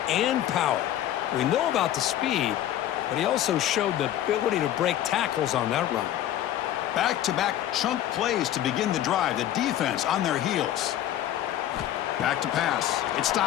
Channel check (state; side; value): quieter; right; 12.2 dB